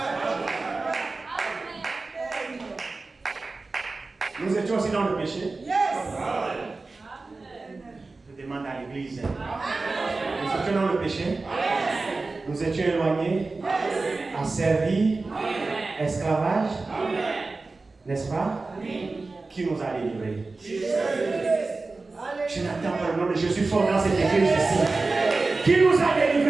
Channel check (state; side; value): quieter; left; 3.6 dB